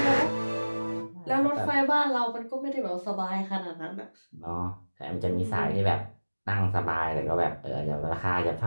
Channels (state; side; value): inverted; both; correlation -1.00